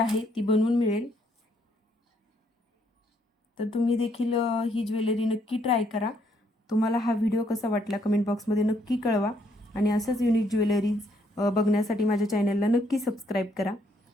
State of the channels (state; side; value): normal; both; correlation 0.70